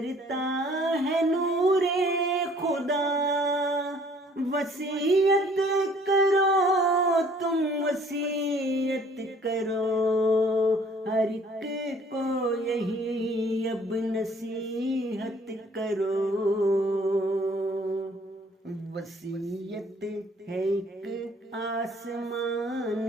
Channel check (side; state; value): both; normal; correlation 0.57